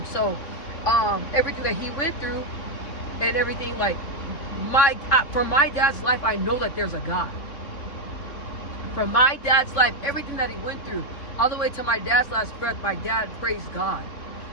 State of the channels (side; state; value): right; late; 3.5 ms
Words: So everything that he went through and everything, like for my dad's life, I know that there's a God. For my dad's life, everything that he went through, all the way to my dad's last breath, my dad praised God.